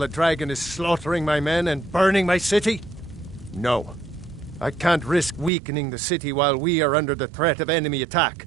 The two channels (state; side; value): drops out; left; at 5.5 s